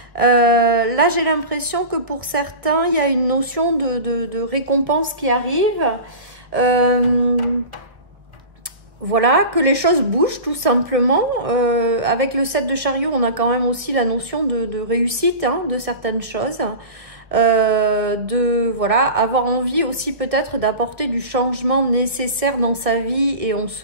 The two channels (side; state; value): left; late; 1.3 ms